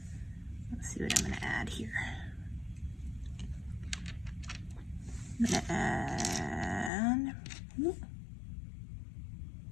Let's see what I'm going to add here. I'm going to add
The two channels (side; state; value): right; drops out; at 6.9 s